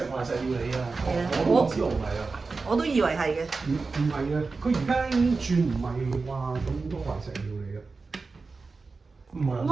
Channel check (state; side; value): quieter; left; 4.1 dB